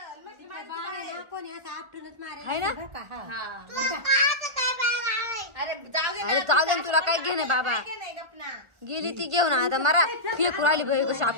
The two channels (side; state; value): left; late; 1.4 ms